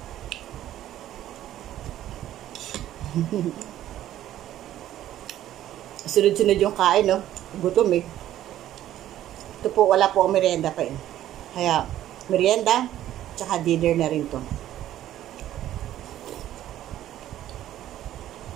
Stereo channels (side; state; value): left; quieter; 12.7 dB